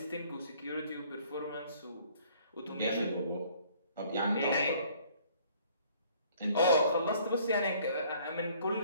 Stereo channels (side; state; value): both; inverted; correlation -0.58